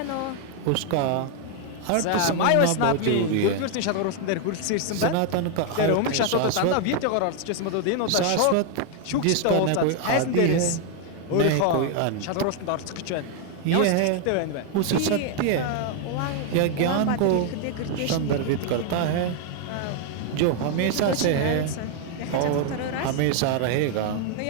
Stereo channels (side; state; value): both; different; correlation 0.00